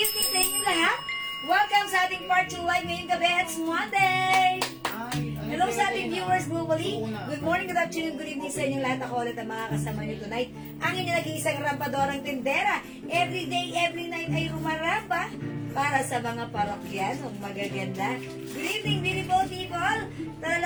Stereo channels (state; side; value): identical; both; correlation 1.00